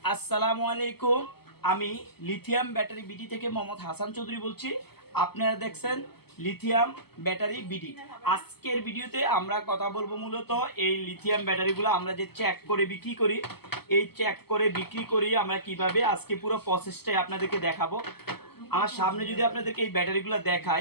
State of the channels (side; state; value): right; late; 0.96 ms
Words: আসসালামু আলাইকুম। আমি লিথিয়াম ব্যাটারি বিডি থেকে মোহাম্মদ হাসান চৌধুরী বলছি। আপনারা দেখছেন লিথিয়াম ব্যাটারি বিডি। আজকের ভিডিওতে আমরা কথা বলবো মূলত এই লিথিয়াম ব্যাটারিগুলো আমরা যে চেক করে বিক্রি করি, এই চেক করে বিক্রি করি আমরা কিভাবে, আজকে পুরো প্রসেসটাই আপনাদেরকে দেখাবো। আমার সামনে যদি আপনাদেরকে এই ব্যাটারিগুলো